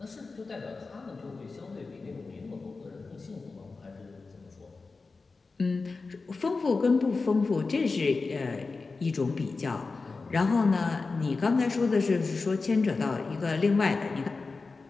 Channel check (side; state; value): right; quieter; 4.0 dB